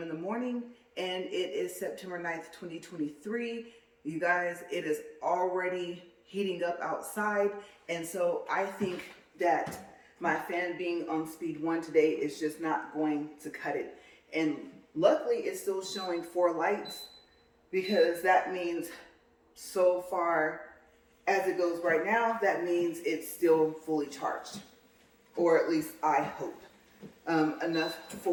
the morning, and it is September 9th, 2023. You guys, it is already heating up outside, and so I think that my fan being on speed 1 today is just not going to cut it. And luckily, it's still showing 4 lights, because that means so far as it goes right now, that means it's still fully charged, or at least I hope, enough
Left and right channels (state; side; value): identical; both; correlation 1.00